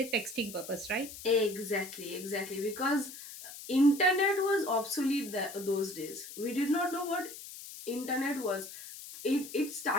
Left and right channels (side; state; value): left; noise; hiss, 13 dB below the sound